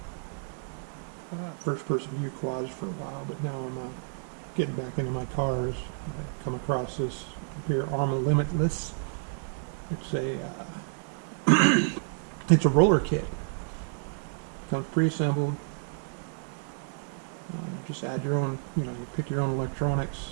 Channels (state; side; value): silent; left; 58 dB below the other